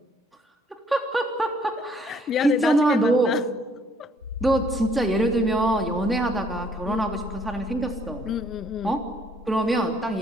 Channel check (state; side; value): normal; both; correlation 0.64